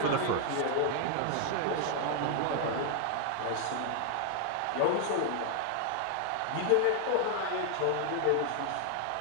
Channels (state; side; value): different; both; correlation 0.00